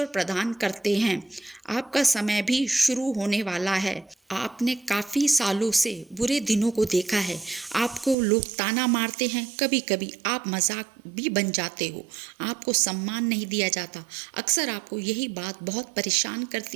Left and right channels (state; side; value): drops out; left; at 8.2 s